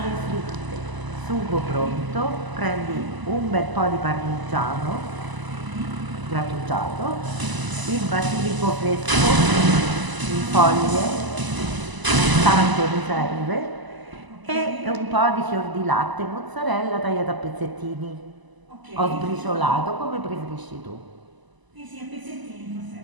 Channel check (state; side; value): late; left; 1.0 ms